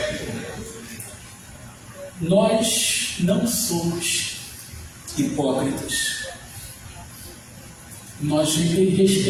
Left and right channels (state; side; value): identical; both; correlation 1.00